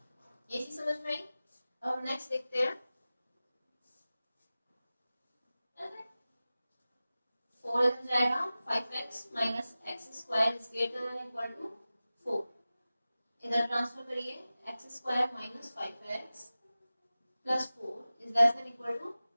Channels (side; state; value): both; inverted; correlation -0.96